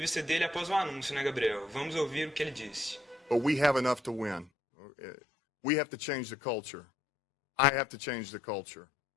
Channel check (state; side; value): drops out; right; at 4.5 s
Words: dele após o anúncio, né, Gabriel? Vamos ouvir o que ele disse. But we have enough to win. We have to change the culture. I have to change the culture.